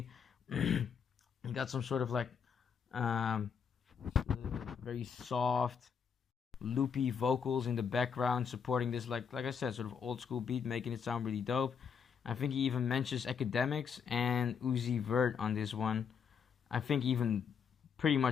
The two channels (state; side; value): quieter; right; 6.8 dB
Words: you got some sort of like very soft, loopy vocals in the background supporting this, like I said, sort of old school beat, making it sound really dope. I think he even mentions Academics and Uzi Vert on this one. I think even pretty